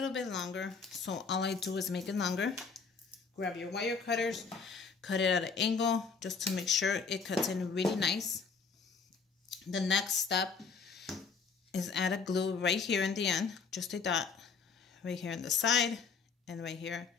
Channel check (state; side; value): quieter; right; 5.3 dB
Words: bit longer. So all I do is make it longer. Grab your wire cutters, cut it at an angle just to make sure it cuts in really nice. The next step is add a glue right here in the end, just a dot right here on the side and right here